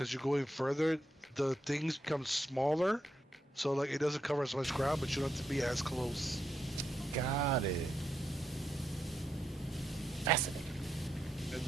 you're going further, the things become smaller, so like it doesn't cover as much ground, but you don't have to be as close. Got it. Fascinating. And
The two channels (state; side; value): normal; both; correlation 0.83